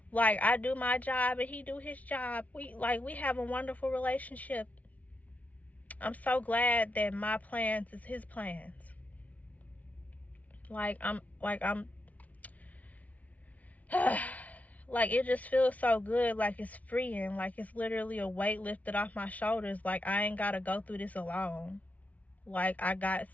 Like, I do my job and he do his job. We have a wonderful relationship. I'm so glad that my plans is his plans. Like, it just feels so good. Like, it's freeing. Like, it's literally a weight lifted off my shoulders. Like, I ain't got to go through this alone. Like, I got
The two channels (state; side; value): late; right; 0.070 ms